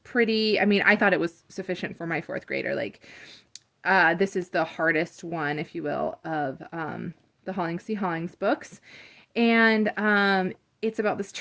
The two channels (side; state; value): both; identical; correlation 1.00